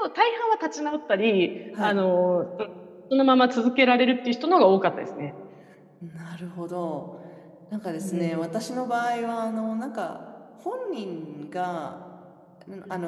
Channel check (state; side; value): identical; both; correlation 1.00